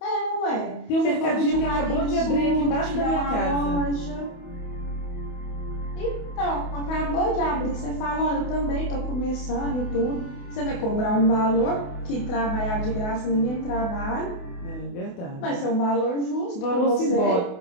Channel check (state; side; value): late; right; 28 ms